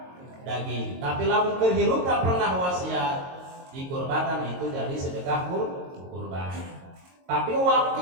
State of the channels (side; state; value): left; late; 22 ms